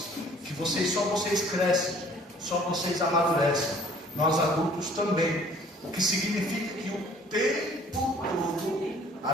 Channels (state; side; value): normal; both; correlation 0.55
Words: que vocês crescem, só vocês amadurecem. Nós adultos também. O que significa que o tempo todo,